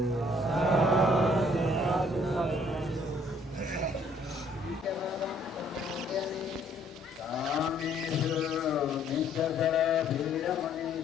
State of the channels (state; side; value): normal; both; correlation 0.63